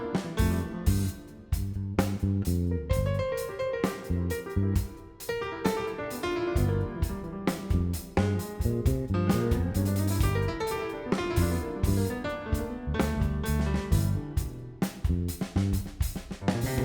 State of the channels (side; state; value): both; identical; correlation 1.00